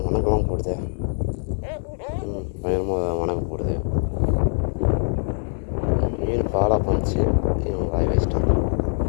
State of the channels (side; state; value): right; silent; digital silence